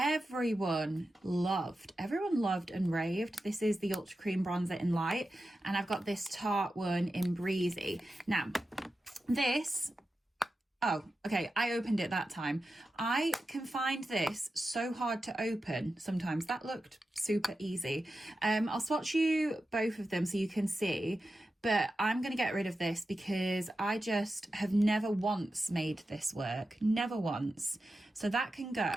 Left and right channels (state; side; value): normal; both; correlation 0.92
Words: loved and raved. This is the Ultra Cream Bronzer in Light, and I've got this Tarte one in Breezy. Now, this... Oh, okay, I opened it that time. I can find this so hard to open sometimes. That looked super easy. I'll swatch you both of them so you can see, but I'm going to get rid of this because I just have never once made this work. Never once. So that can